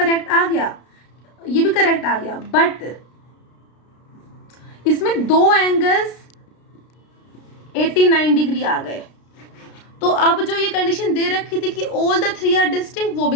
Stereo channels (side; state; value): right; late; 33 ms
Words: आ गया, ये भी करेक्ट आ गया, बट इसमें दो एंगल्स 89 डिग्री आ गए। तो अब जो ये कंडीशन दे रखी थी कि all the three are distinct, वो